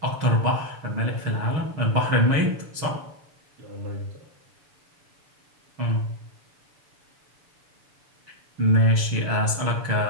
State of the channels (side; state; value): left; late; 6.9 ms